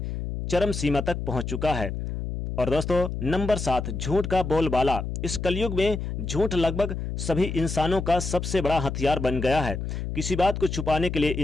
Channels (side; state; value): left; noise; hum, 5 dB below the sound